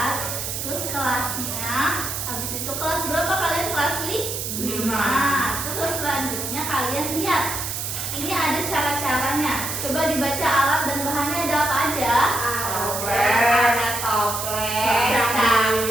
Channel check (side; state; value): right; noise; hiss, 4 dB below the sound